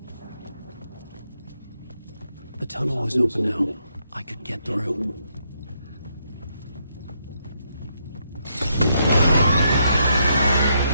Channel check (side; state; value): both; inverted; correlation -0.77